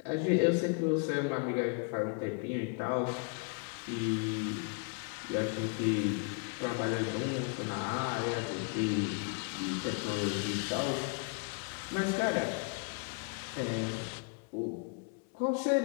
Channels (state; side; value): quieter; right; 38.2 dB